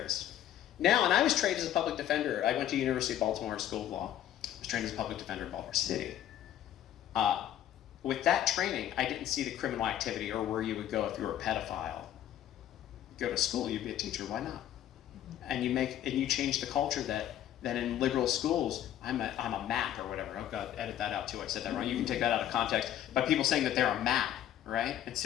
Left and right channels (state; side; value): quieter; right; 11.5 dB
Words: Now, and I was trained as a public defender. I went to University of Baltimore School of Law. I was trained as a public defender in Baltimore City. With that training, I didn't see the criminal activity or where you would go if you were a pedophile. Go to school, you'd be a teacher, why not? And you change the culture that in liberal schools, I'm a map or whatever. Oh God, edit that out too, I said that wrong. You can take that out of context. But people saying that they're a map, right?